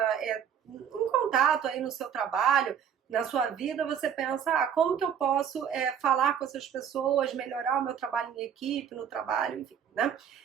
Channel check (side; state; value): left; quieter; 8.3 dB